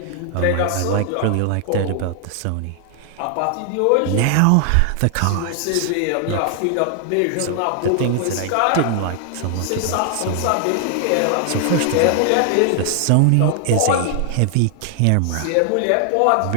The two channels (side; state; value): both; different; correlation 0.00